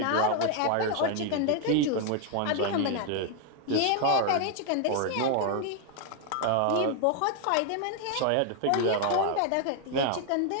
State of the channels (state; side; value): different; both; correlation 0.00